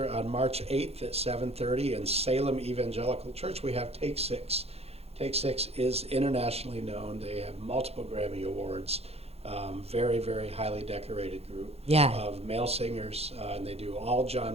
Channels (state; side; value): late; left; 0.29 ms